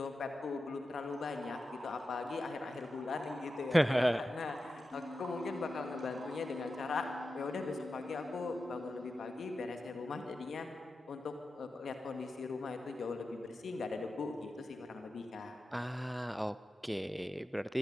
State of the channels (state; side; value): normal; both; correlation 0.91